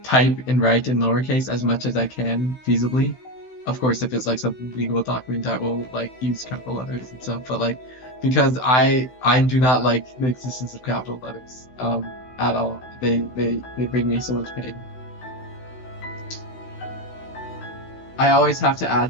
type and write in lowercase as much as I can feasibly. Of course, if it's like some legal document, I will like use capital letters and stuff. But like, because I do not like the existence of capital letters at all. They bring me so much pain. I always have to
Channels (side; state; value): right; late; 16 ms